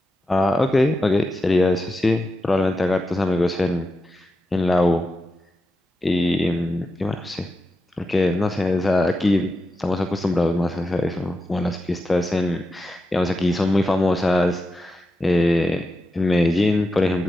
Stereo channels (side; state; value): both; normal; correlation 0.89